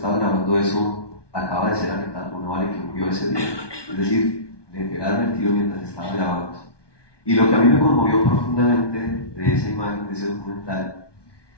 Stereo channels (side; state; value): right; late; 1.2 ms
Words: grabando eso acaba de ser alertada por una bala y que murió ese día. Es decir, le pegaron el tiro mientras estaba grabando. Y lo que a mí me conmovió profundamente de esa imagen, de ese documental,